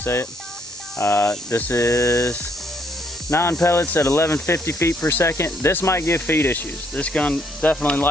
it. This is 9 pellets at 1150 feet per second. This might give feed issues. This gun definitely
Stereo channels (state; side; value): normal; both; correlation 0.70